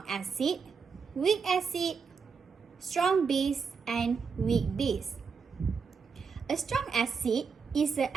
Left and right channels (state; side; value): quieter; left; 5.6 dB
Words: acid, weak acid, strong base, and weak base. A strong acid is an